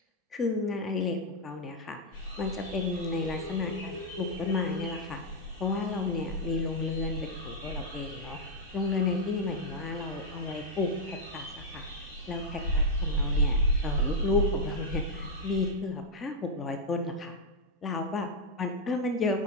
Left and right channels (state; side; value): normal; both; correlation -0.02